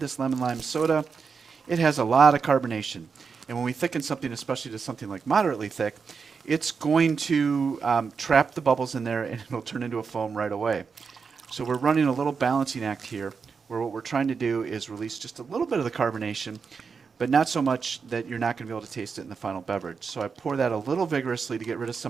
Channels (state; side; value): quieter; left; 5.5 dB